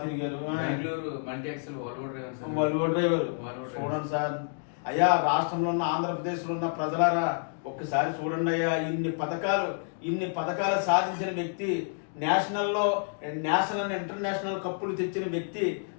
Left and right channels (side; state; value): right; silent; digital silence